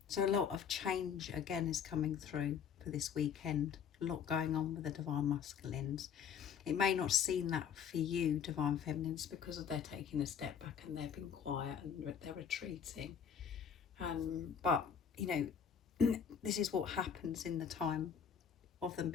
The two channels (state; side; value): quieter; right; 7.6 dB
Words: So a lot of change again is coming through for this weekend. A lot going on with the Divine Masculines. It may not seem that for you, Divine Feminines, because they're taking a step back and they're being quiet and they're retreating. But this is what happens in the time of them